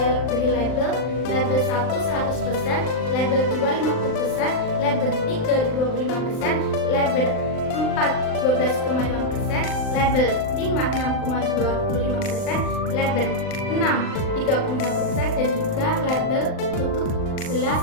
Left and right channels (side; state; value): right; late; 39 ms